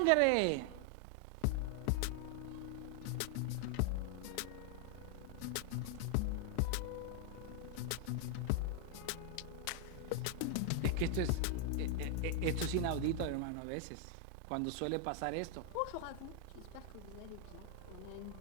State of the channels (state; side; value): different; both; correlation 0.00